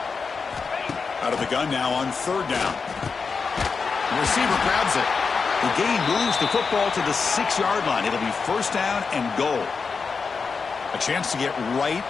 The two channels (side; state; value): right; quieter; 5.1 dB